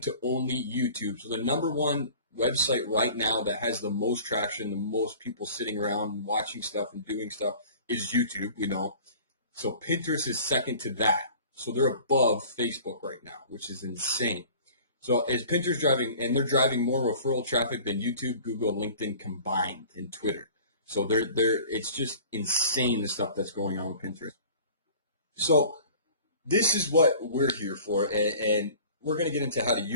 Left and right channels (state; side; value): inverted; both; correlation -0.45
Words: to only YouTube. So the number one website right now that has the most traction, the most people sitting around and watching stuff and doing stuff is YouTube, So Pinterest is second to that. So they're above Facebook right now, which is insane. So is Pinterest driving, and they're driving more referral traffic than YouTube, Google, LinkedIn combined, and Twitter. So it's just insane the stuff that's going on with Pinterest. So this is what we're here for, and we're going to get into how to